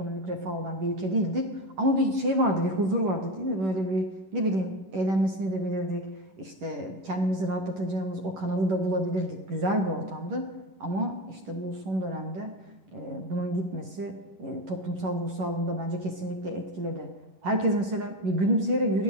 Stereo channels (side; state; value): left; late; 11 ms